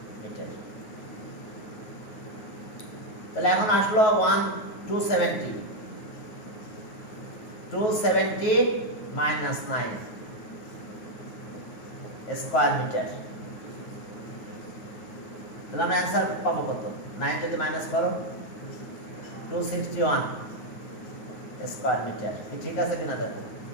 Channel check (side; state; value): right; late; 9.4 ms